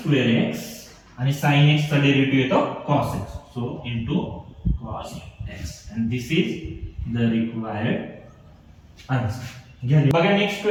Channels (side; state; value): both; identical; correlation 1.00